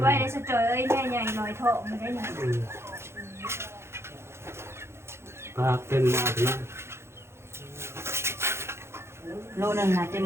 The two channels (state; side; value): late; left; 0.12 ms